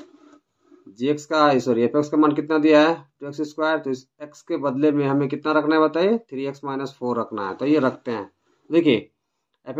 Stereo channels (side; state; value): both; identical; correlation 1.00